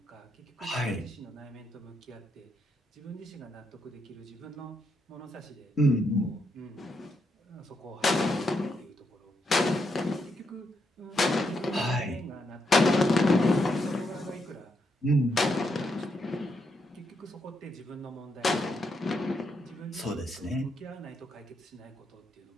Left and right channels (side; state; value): both; normal; correlation 0.79